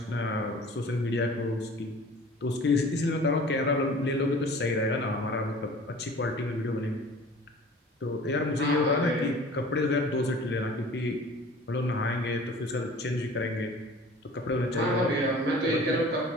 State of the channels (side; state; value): both; normal; correlation 0.45